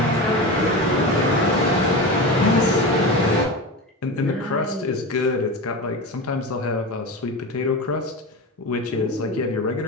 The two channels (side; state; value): both; normal; correlation 0.25